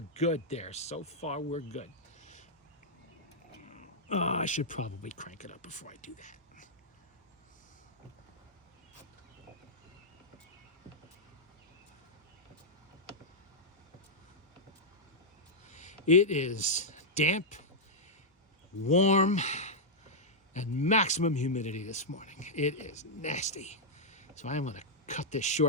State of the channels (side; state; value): both; normal; correlation -0.07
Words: good there. So far, we're good. I should probably crank it up before I do that. It is damp, warm, and maximum humidity this morning. It is nasty. So I'm going to cut this